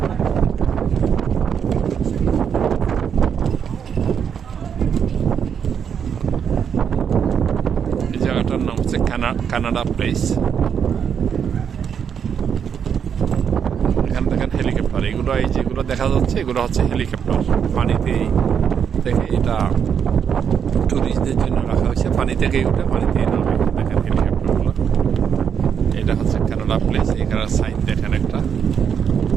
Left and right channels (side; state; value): left; quieter; 7.6 dB